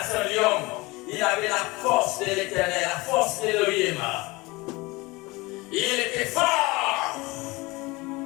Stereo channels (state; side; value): quieter; right; 23.0 dB